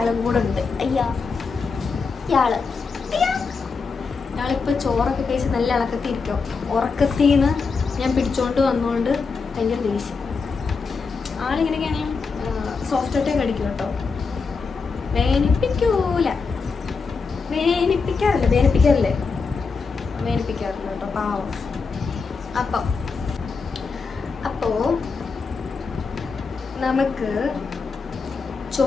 കൂടെ ഉണ്ട്. ഇയാളിപ്പോൾ ചോറൊക്കെ കഴിച്ച് നല്ല ഇളക്കത്തിരിക്കും. ഉറക്കത്തിൽ നിന്ന് ഞാൻ പിടിച്ചോണ്ട് വന്നുകൊണ്ട് ഭയങ്കര ദേഷ്യം. ആളിങ്ങനെയൊക്കെയാണെങ്കിൽ സോഫ്റ്റ് കടിക്കും കേട്ടോ. വേനിപ്പിക്കാറില്ല കേട്ടോ, പാവം. അപ്പോൾ നമുക്ക്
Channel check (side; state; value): right; quieter; 4.8 dB